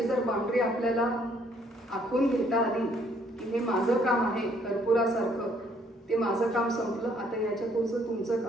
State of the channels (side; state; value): both; normal; correlation 0.65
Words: जर बाउंड्री आपल्याला आखून घेता आली की हे माझं काम आहे कर्पुरासारखं, ते माझं काम संपलं, आता याच्या पुढचं तुमचं